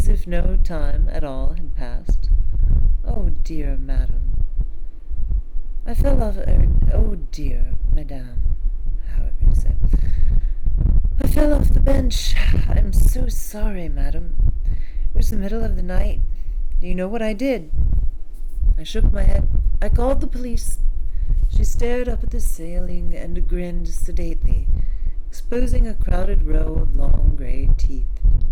if no time at all had passed. "Oh dear, madam." "I fell off oh dear, madame. However you say. I fell off the bench. I'm so sorry, madam. It was the middle of the night. Do you know what I did?" I shook my head. "I called the police." She stared up at the ceiling and grinned sedately, exposing a crowded row of long gray teeth.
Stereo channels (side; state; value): both; identical; correlation 1.00